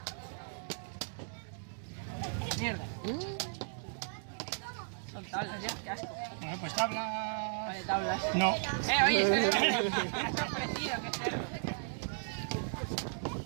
Mierda. Son tablas ya, qué asco. Bueno, pues tabla. Vale, tablas. No. Oye, me has ofrecido, qué cerdo.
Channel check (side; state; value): left; silent; digital silence